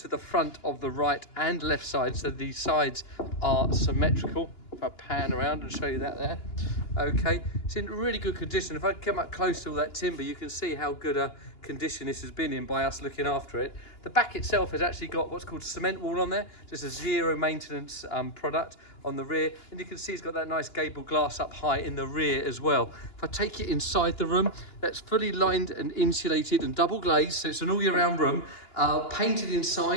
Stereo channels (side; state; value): right; late; 2.9 ms